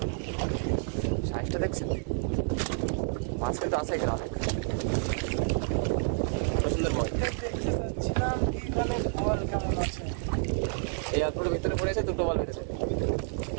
সাইজটা দেখছেন, মাছ কিন্তু আছে এখানে অনেক সুন্দর বল। এই অল্পটার ভিতরে পড়েছে, 2টো বল বেঁধেছে।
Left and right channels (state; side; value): silent; left; digital silence